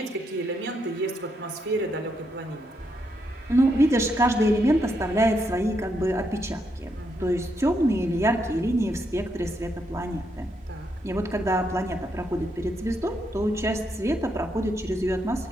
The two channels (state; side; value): normal; both; correlation 0.79